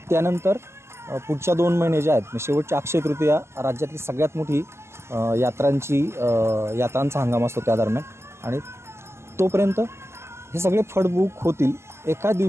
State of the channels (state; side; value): late; left; 0.13 ms